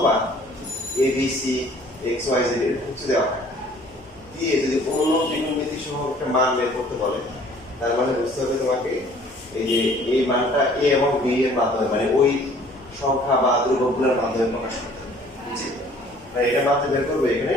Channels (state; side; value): normal; both; correlation 0.54